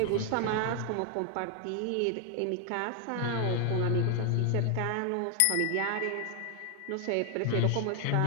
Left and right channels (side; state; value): both; different; correlation 0.00